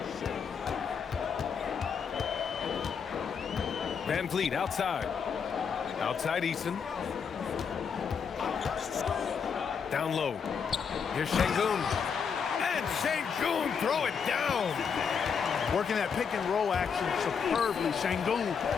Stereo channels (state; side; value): quieter; right; 6.5 dB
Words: Van Vliet outside. Outside Eason. Down low. Here's Şengün. And Şengün throw it down. Working that pick and roll action superbly. Şengün